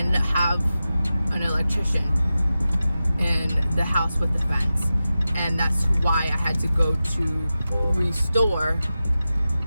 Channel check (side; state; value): both; inverted; correlation -0.93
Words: have an electrician in the house with the fence, and that's why I had to go to Restore,